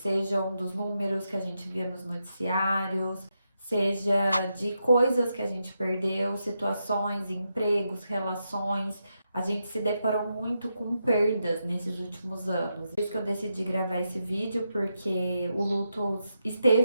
dos números que a gente via nos noticiários, seja de coisas que a gente perdeu, situações, empregos, relações. A gente se deparou muito com perdas nesses últimos anos. Por isso que eu decidi gravar esse vídeo, porque o luto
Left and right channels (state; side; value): inverted; both; correlation -0.85